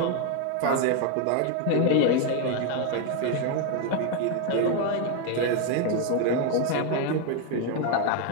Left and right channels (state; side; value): different; both; correlation 0.01